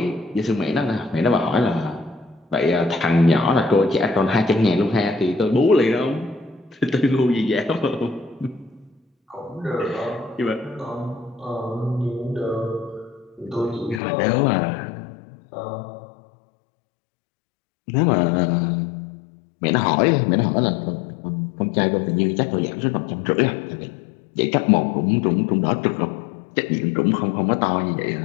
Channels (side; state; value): right; drops out; at 14.0 s